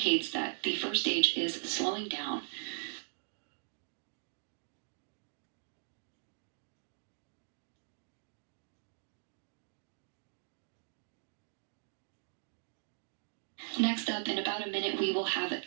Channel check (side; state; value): left; silent; digital silence